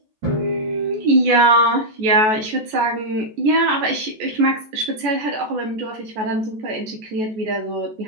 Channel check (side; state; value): left; late; 14 ms